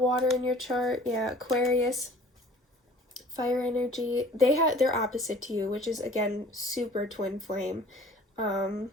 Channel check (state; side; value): normal; both; correlation 0.49